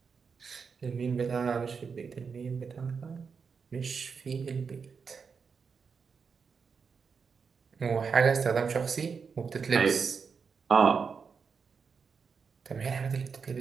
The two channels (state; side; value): quieter; left; 5.7 dB